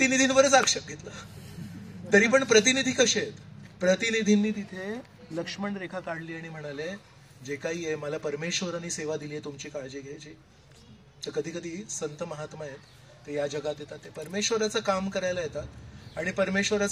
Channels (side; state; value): both; identical; correlation 1.00